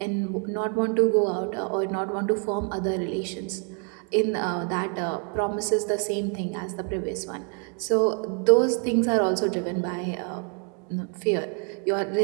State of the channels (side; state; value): left; quieter; 39.0 dB